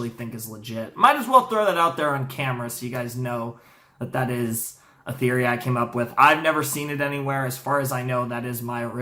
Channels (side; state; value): both; identical; correlation 1.00